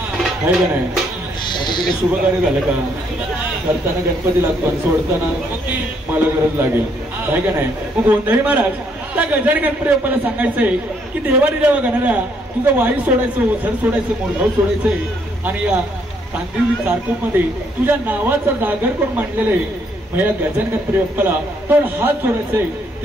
आहे का नाही? आता तिथे शुभ कार्य झालं का, करताना गणपती लागतो आणि सोडताना मला गरज लागेल, आहे का नाही? मग गोंधळी महाराज, त्या गजानन गणपती बाप्पाला सांगायचंय की देवानी देवा गणाऱ्या, तुझं वाई सोडायचं, ओझर सोडायचं, मोरगाव सोडायचंय, आणि या कांदिवली चारकोप मध्ये तुझ्या नावाचा जागर कोण मांडलेलं आहे. मग या गजानन गणपती बाप्पाला दोन हात सोडायचंय,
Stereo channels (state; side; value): normal; both; correlation 0.70